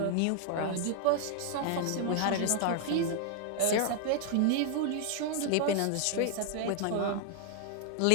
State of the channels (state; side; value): different; both; correlation 0.00